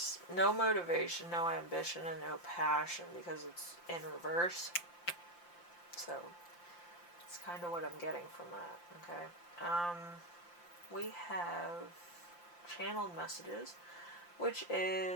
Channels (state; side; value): late; right; 5.8 ms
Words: no motivation, no ambition, and no passion because it's in reverse. So, it's kind of what I'm getting from that, okay? We have channeled messages, which